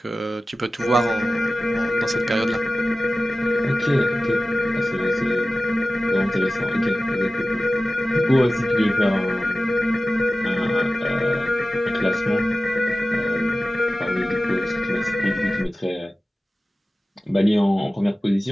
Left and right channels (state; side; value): normal; both; correlation 0.96